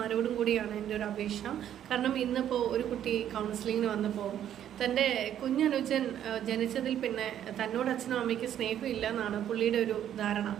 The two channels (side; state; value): left; quieter; 10.5 dB